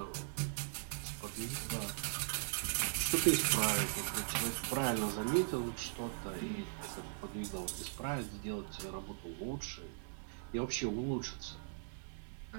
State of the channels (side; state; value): left; silent; 51 dB below the other